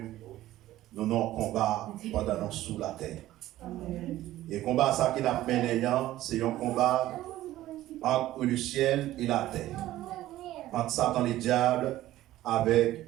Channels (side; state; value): left; quieter; 14.9 dB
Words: nous avons un combat pendant nous sous la terre. Amen. Et le combat ça qui n'a mené, c'est un combat entre le ciel et la terre. Entre Satan et le diable avec